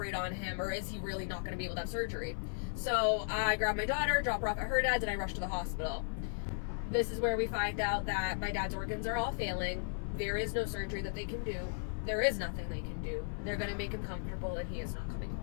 on him, or is he really not going to be able to have surgery? So I grabbed my daughter, dropped her off at her dad's, and I rushed to the hospital. This is where we find out that my dad's organs are all failing. There is no surgery that they can do. There is nothing they can do. They're going to make him comfortable, and he is not coming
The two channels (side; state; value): right; silent; 54 dB below the other